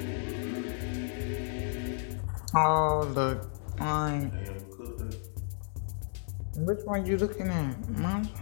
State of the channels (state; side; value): silent; right; digital silence